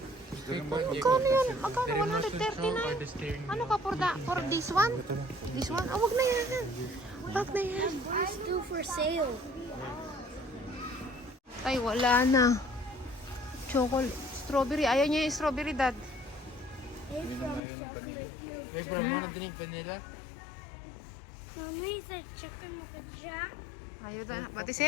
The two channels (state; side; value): drops out; right; at 17.6 s